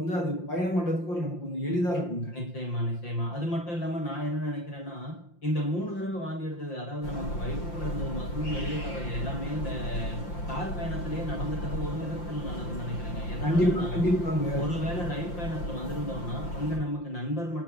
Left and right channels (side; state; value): right; late; 5.7 ms